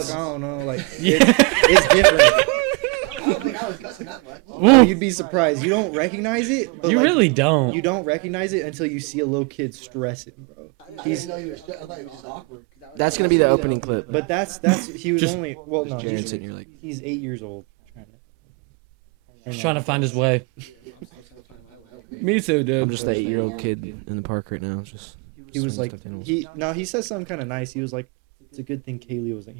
fuck, I don't know. Like, it's different. I don't think I was cussing that much. Ooh, You'd be surprised. You don't recognize it. But you like, really don't. You don't recognize it until you see a little kid stressing, bro. I didn't know he was. I thought he was just awkward because I was. That's here gonna be the so- opening clip. But that's he was Just- only well no James he's, and you're like, he's 8 years old. He's trying to find his way. Yeah, well, I'm still trying to find my way. Me too, dude. I'm just that blocked. young kid in the park right now. Just He was like he. he said something kind of nice. He was like, it's a good thing Kaylee wasn't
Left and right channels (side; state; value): left; quieter; 30.2 dB